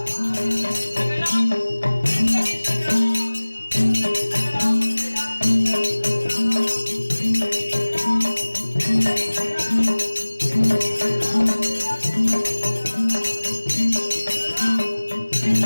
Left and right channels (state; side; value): inverted; both; correlation -1.00